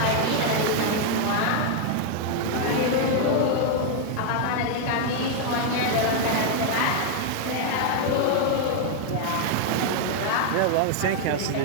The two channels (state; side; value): different; both; correlation 0.00